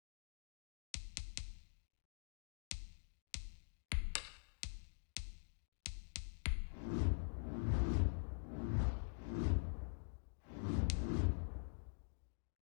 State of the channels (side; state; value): right; silent; digital silence